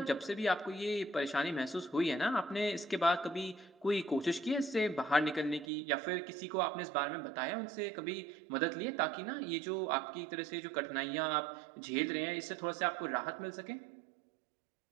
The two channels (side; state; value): left; drops out; at 5.7 s